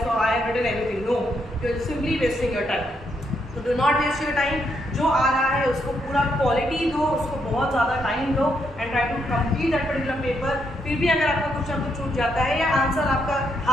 so I have written everything. No, you're simply wasting your time. तो do not waste your time, जो आ रहा है उसको पूरा क्वालिटी दो, उसको बहुत ज़्यादा टाइम दो and try to complete that particular paper. फिर भी अगर आपका कुछ ना कुछ छूट जाता है या आंसर आपका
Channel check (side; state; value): both; normal; correlation 0.77